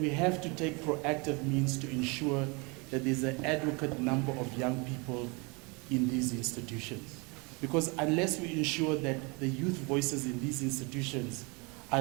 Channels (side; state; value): left; quieter; 29.5 dB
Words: have to take proactive means to ensure that there's an adequate number of young people in these institutions. Because unless we ensure that the youth voices in these institutions